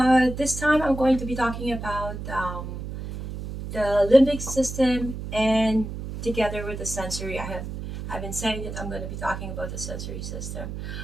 this time I'm going to be talking about the limbic system, and together with the sensory. I've been saying that I'm going to be talking about the sensory system,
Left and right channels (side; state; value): right; noise; hum, 7 dB below the sound